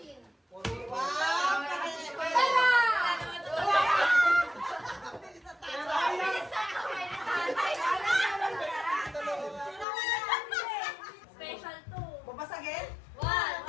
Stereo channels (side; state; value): right; drops out; at 9.9 s